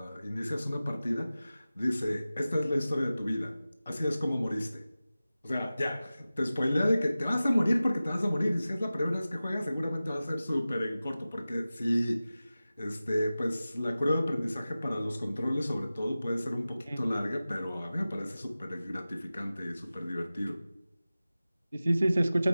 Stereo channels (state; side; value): inverted; both; correlation -0.96